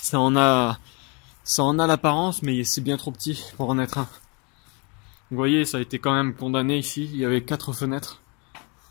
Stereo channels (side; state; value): right; quieter; 31.4 dB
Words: en a l'apparence, mais c'est bien trop petit pour en être un. Vous voyez, ça a été quand même condamné ici. Il y avait 4 fenêtres.